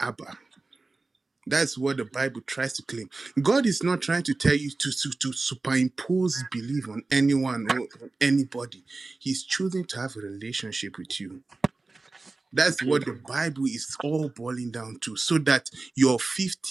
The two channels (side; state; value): left; quieter; 3.5 dB